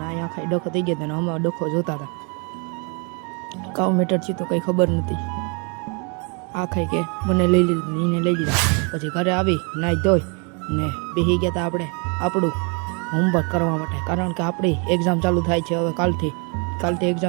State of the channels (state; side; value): quieter; left; 34.4 dB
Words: ને અહીંયા આખાઈ ડખો થઈ ગયો હતો ને અમે ડખો જોતા હતા. કાવ મીટર છે તો કંઈ ખબર નથી. આ ખાઈ કે મને લઈ લીધું, એને લઈ લીધા. પછી ઘરે આવી નાહી ધોઈ ને બેસી ગયા હતા આપણે આપણું હોમવર્ક કરવા માટે. કારણ કે આપણી એક્ઝામ ચાલુ થાય છે હવે કાલથી